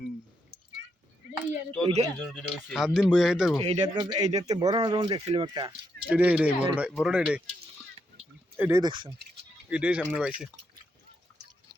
সাত দিন বইয়া খাইতে পারবো এইটাতে বড় না যখন দেখছিলাম একটা এটাই বড়টা এটাই দেখছেন এটাই সামনে পাইছে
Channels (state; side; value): normal; both; correlation 0.79